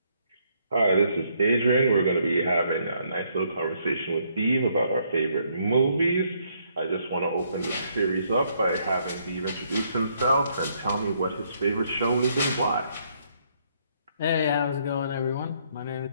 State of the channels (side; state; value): both; inverted; correlation -0.71